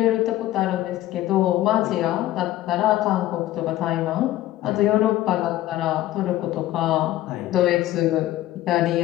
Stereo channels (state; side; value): quieter; right; 14.8 dB